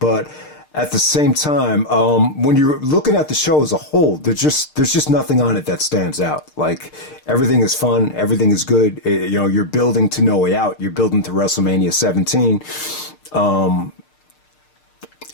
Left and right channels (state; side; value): late; right; 6.6 ms